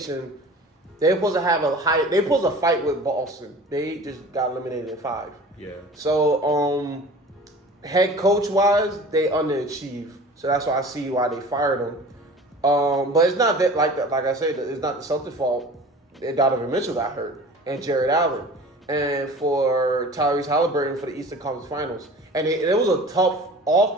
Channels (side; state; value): both; normal; correlation 0.41